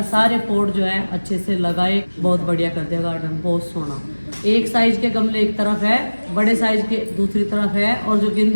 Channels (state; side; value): inverted; both; correlation -1.00